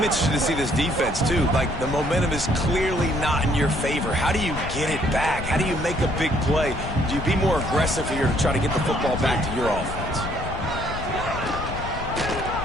interested to see this defense, too. Like, the momentum is clearly not in your favor. How do you get it back? How do you make a big play? Do you be more aggressive here to try to get the football back to your offense?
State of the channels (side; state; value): left; noise; rumble, 8 dB below the sound